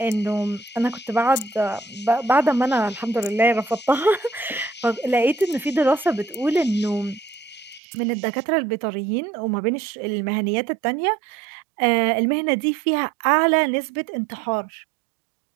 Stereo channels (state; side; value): drops out; left; at 7.8 s